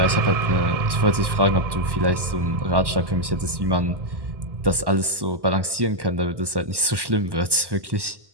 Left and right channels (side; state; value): left; late; 1.1 ms